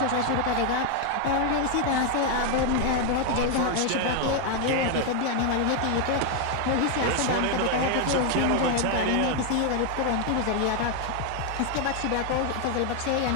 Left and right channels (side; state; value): both; different; correlation 0.01